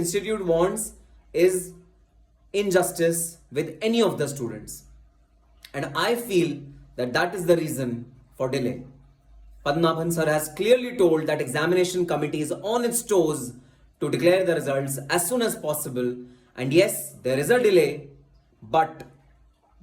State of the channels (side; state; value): both; identical; correlation 1.00